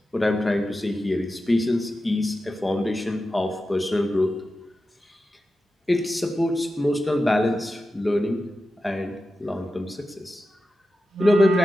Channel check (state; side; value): normal; both; correlation 0.92